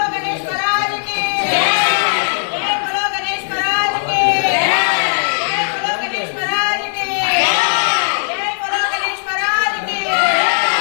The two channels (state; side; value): silent; right; digital silence